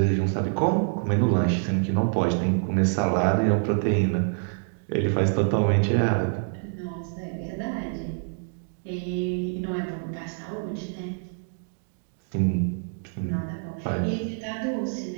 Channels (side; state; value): left; silent; 61 dB below the other